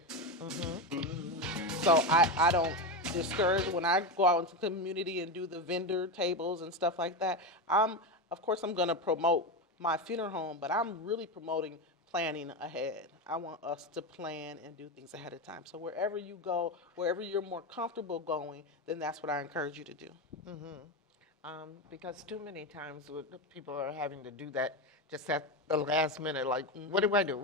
So I don't discourage when I go out into the community and do the vendor tables and stuff like that. Of course, I'm going to promote my funeral home, but I'm really promoting planning ahead. I want us to plan and do things ahead of time. So wherever you go, wherever you're more comfortable going, then that's what I encourage you to do. Because too many times people are having to do that just at the last minute, like, what do I do?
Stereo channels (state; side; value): normal; both; correlation 0.15